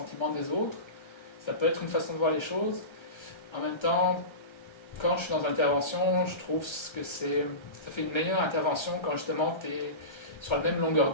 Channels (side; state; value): right; late; 1.3 ms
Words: des autres. Ça peut être une façon de voir les choses. En même temps, quand je suis dans l'intervention, je trouve que ça fait une meilleure intervention quand justement tu es sur la même longueur